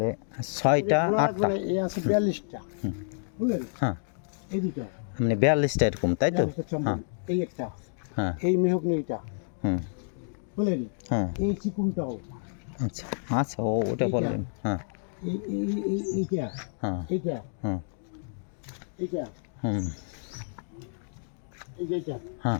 ছয়টা, আটটা, এই আছে 42টা, বুঝলেন? হ্যাঁ এই দুটো মানে 42টা এরকম, তাই তো? হ্যাঁ এই একটা, হ্যাঁ এই মেহগনি এটা, হুম বুঝলেন? হ্যাঁ এই চিকুনটাও, আচ্ছা আচ্ছা, ওটা বললেন। হ্যাঁ এইটা, হ্যাঁ এইটা, হুম এইটা, হুম এইটা,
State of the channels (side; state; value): right; silent; digital silence